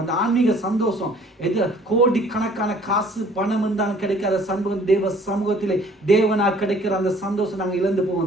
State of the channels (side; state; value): both; normal; correlation 0.55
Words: அந்த ஆன்மீக சந்தோஷம் எது கோடிக்கணக்கான காசு பணம் இருந்தாலும் கிடைக்காத சமூகம் தேவ சமூகத்திலே தேவனாக கிடைக்கிற அந்த சந்தோஷம் நாங்கள் இழந்து